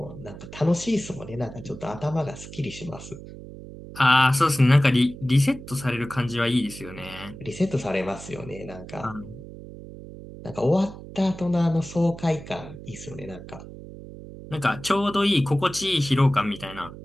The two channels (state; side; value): noise; right; hum, 14 dB below the sound